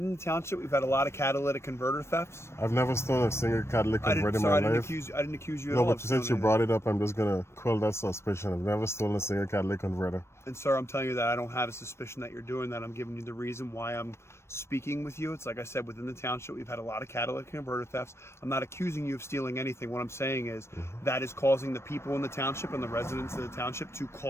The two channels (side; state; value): right; late; 0.13 ms